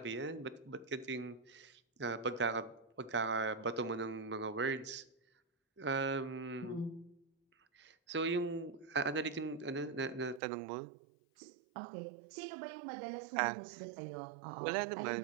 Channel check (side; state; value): left; drops out; at 10.4 s